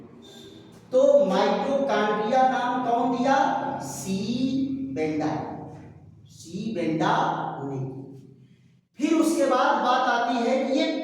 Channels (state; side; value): identical; both; correlation 1.00